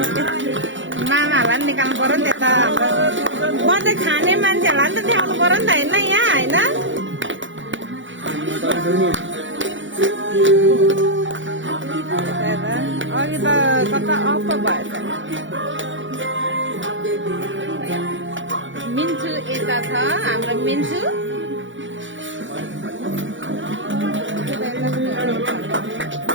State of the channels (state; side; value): late; left; 0.55 ms